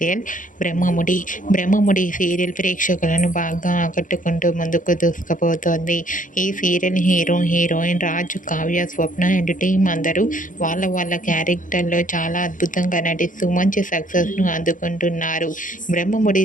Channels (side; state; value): right; late; 0.38 ms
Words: Brahmamudi serial ప్రేక్షకులను బాగా ఆకట్టుకుంటూ ముందుకు దూసుకుపోతోంది. ఈ serial heroine Raju, Kavya, Swapna and team అందరూ వాళ్ళ క్యారెక్టర్లో చాలా అద్భుతంగా నటిస్తూ మంచి సక్సెస్ను అందుకుంటున్నారు. బ్రహ్మముడి